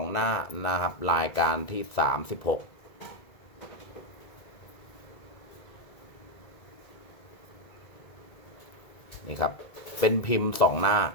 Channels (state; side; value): late; right; 1.9 ms